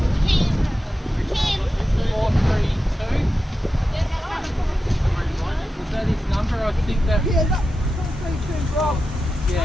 Was that his number? I think that... Yeah, that's 432 Rob. Yeah,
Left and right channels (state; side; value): normal; both; correlation 0.91